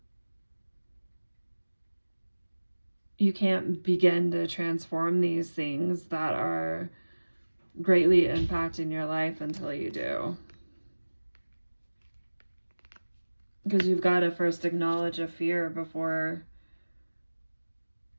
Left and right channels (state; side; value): inverted; both; correlation -1.00